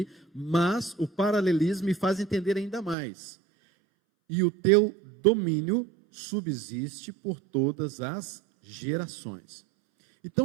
mas o paralelismo me faz entender ainda mais. E o teu domínio subsiste por todas as gerações.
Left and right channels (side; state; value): left; drops out; at 3.0 s